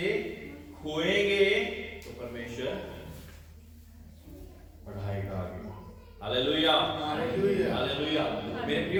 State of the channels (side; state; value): both; identical; correlation 1.00